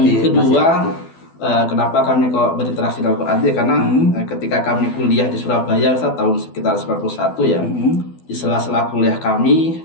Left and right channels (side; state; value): right; late; 12 ms